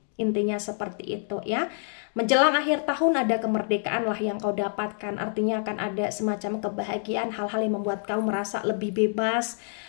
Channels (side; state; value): right; silent; digital silence